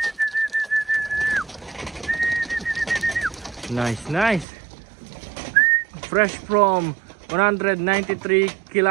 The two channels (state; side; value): drops out; left; at 4.5 s